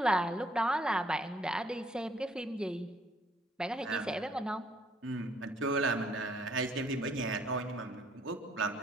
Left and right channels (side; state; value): both; normal; correlation 0.65